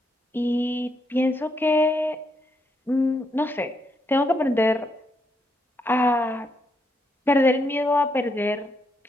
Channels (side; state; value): both; normal; correlation 0.78